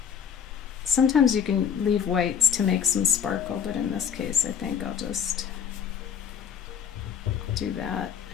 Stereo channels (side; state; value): right; quieter; 7.7 dB